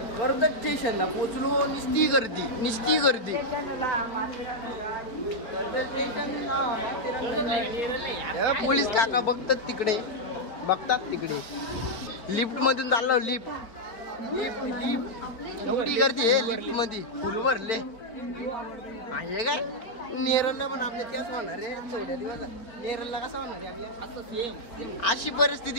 कर्जत स्टेशनला पोचलो. निस्ती गर्दी निस्ती गर्दी. पोलीस काका बघतात तिकडे, बघतात तिकडे. लिफ्ट मधून चाललो. लिफ्ट लिफ्ट लिफ्ट एवढी गर्दी आहे लिफ्ट मध्ये, फुल भरले आहे काय. नेरलला पण आपल्या त्याच होणार आहे थोड्या दिवस. नेरलला कसा होणार आहे आपल्या असं सेम अशी परिस्थिती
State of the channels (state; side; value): late; right; 4.4 ms